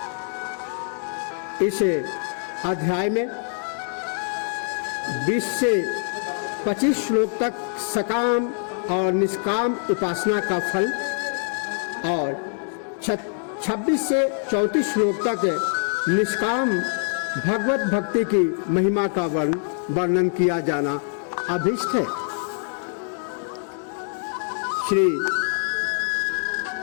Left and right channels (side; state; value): right; silent; digital silence